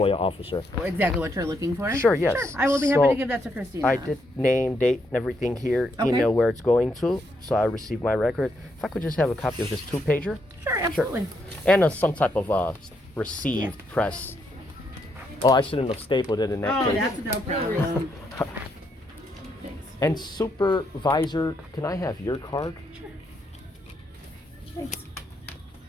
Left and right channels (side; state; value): both; normal; correlation 0.77